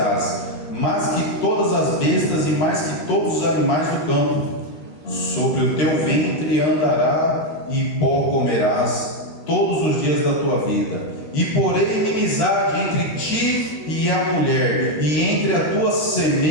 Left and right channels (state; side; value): late; right; 13 ms